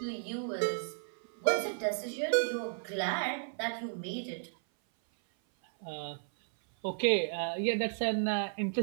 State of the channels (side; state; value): left; silent; 55 dB below the other